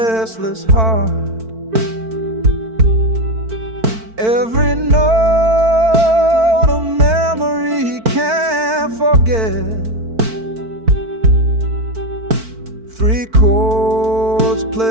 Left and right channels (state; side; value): late; left; 4.5 ms